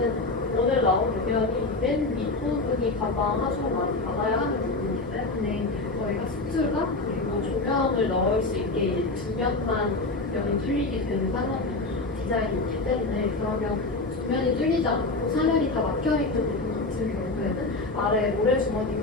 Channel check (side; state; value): right; quieter; 3.2 dB